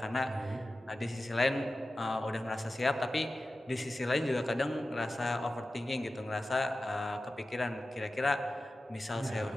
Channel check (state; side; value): normal; both; correlation 0.94